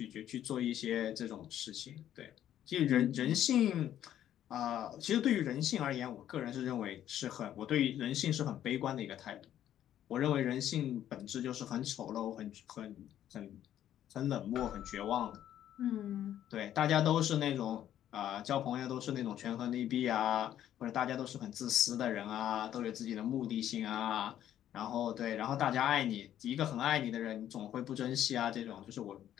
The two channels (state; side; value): quieter; right; 11.3 dB